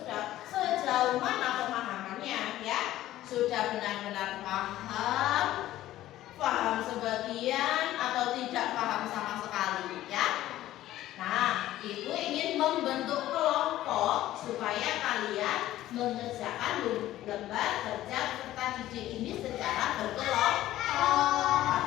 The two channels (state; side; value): quieter; right; 14.3 dB